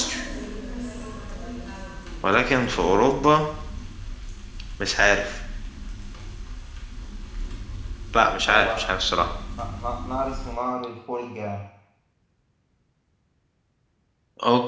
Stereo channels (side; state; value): both; identical; correlation 1.00